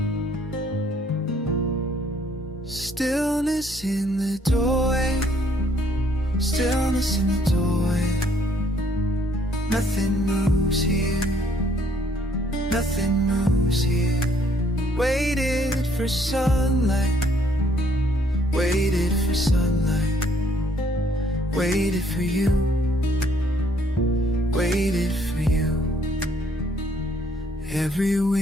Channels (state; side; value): normal; both; correlation 0.65